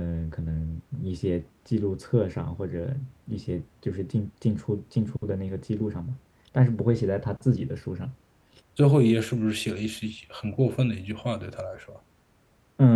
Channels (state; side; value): identical; both; correlation 1.00